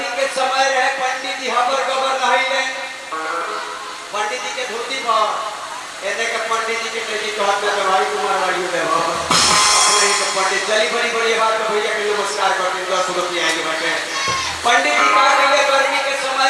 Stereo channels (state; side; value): identical; both; correlation 1.00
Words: के समय रहे, पंडित जी हबर गबर नहाइले, पंडित जी के धोती पर एने के पंडित जी के टेकी कहत में भाई कुमार वाली दे हो अपने के पंडित चली बड़ी बड़ी बात भैया के नमस्कार करते 10 रुपया आगे बैठे। पंडित जी का कहे गर्मी के